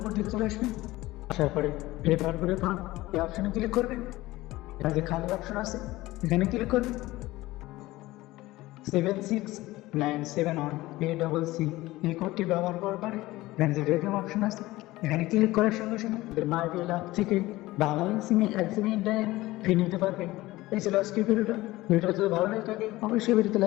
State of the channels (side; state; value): right; quieter; 18.4 dB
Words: দিকে চলে আসবেন। আসার পরে রেফার করে পান এই অপশনে ক্লিক করবেন। এখানে যে খালি অপশন আছে এখানে ক্লিক করবেন। 76971 এই কোডটি ব্যবহার করার পরে এখানে যে রেডিয়াম অপশন আছে এখানে ক্লিক করার সঙ্গে সঙ্গে মাই বিল অ্যাপ থেকে বাংলা সিমে 1 GB ইন্টারনেট ফ্রি নিতে পারবেন। এই ছিল আজকের ভিডিওটা যদি ভালো লাগে থাকে অবশ্যই ভিডিওতে